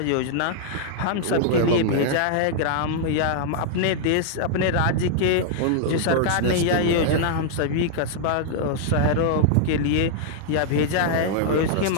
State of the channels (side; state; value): both; different; correlation -0.01